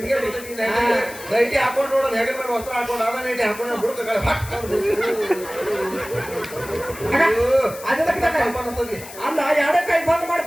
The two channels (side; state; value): left; noise; hiss, 15 dB below the sound